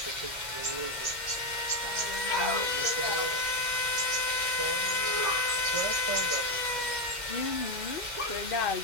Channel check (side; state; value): right; late; 2.1 ms